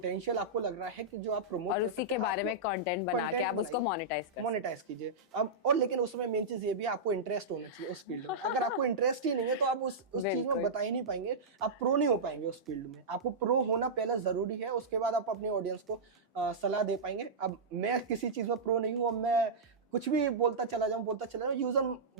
आपको लग रहा है कि जो आप प्रमोट, और उसी के बारे में कंटेंट बना के आप उसको मोनेटाइज कीजिए। अब और लेकिन उसमें मेन चीज ये भी, आपको इंटरेस्ट होना चाहिए उस फील्ड में। अगर आपको इंटरेस्ट ही नहीं है तो आप उस चीज में बता ही नहीं पाएंगे, आप प्रो नहीं हो पाएंगे उस फील्ड में। आपको प्रो होना पहले जरूरी है, उसके बाद आप अपनी ऑडियंस को सलाह दे पाएंगे। अब मैं किसी चीज में प्रो नहीं हूँ, अब मैं कुछ भी बोलता चला जाऊं, यूजर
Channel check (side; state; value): left; quieter; 3.1 dB